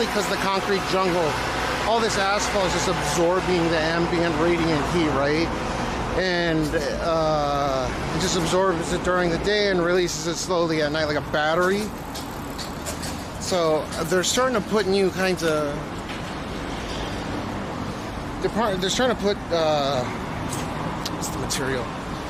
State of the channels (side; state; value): both; identical; correlation 1.00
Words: because the concrete jungle, all this asphalt is just absorbing the ambient radiant heat, right? And it just absorbs it during the day and releases it slowly at night like a battery. So they're starting to put new kinds of. They're trying to put what's the material